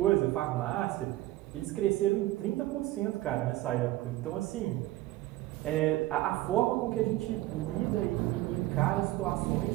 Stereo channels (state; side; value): quieter; left; 16.7 dB